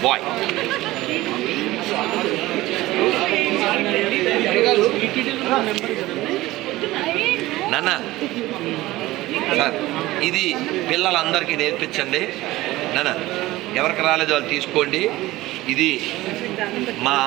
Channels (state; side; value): quieter; left; 17.8 dB